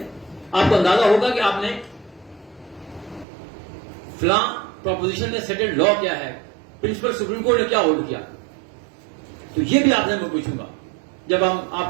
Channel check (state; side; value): drops out; left; at 3.2 s